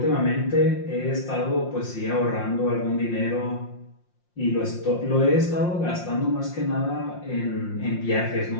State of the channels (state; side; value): late; right; 5.7 ms